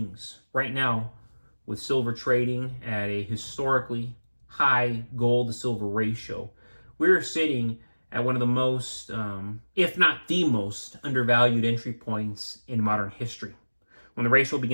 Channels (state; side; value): inverted; both; correlation -1.00